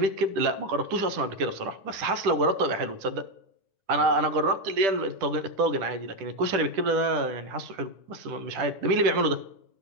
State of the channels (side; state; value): left; late; 10 ms